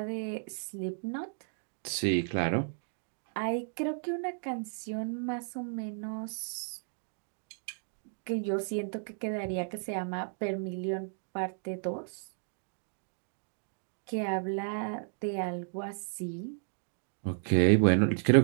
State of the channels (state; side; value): silent; left; digital silence